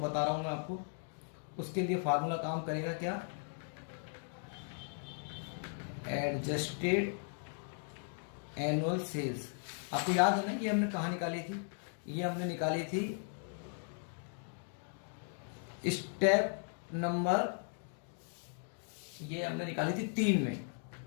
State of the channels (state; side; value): silent; right; 53 dB below the other